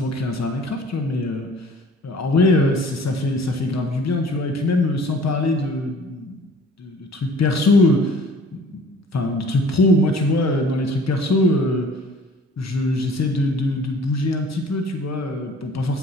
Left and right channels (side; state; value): both; normal; correlation 0.50